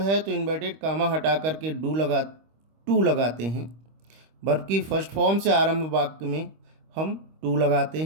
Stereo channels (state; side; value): late; left; 25 ms